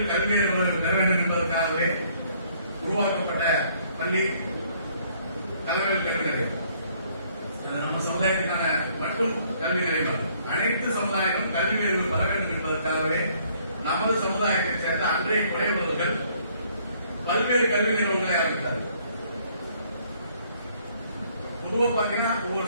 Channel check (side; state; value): both; inverted; correlation -0.64